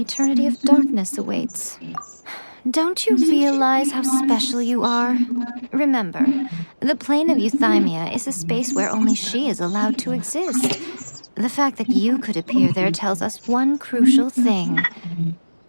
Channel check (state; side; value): inverted; both; correlation -1.00